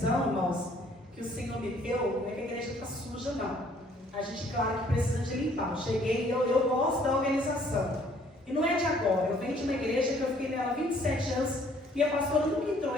irmãos, que o Senhor me deu, não é que a igreja está suja, não. A gente, claro, que precisa de limpar. Eu cheguei e eu gosto da organização. E não é de agora. Eu venho de uma igreja que eu fiquei nela 27 anos e a pastora nunca entrou,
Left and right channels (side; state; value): both; normal; correlation 0.61